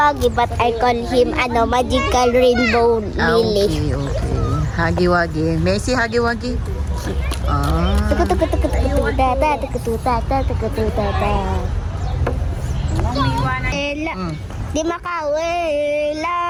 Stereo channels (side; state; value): both; identical; correlation 1.00